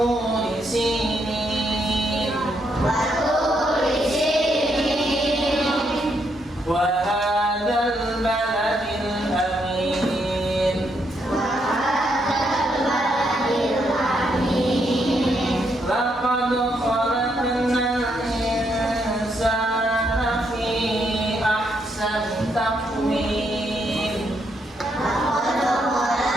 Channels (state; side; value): normal; both; correlation 0.77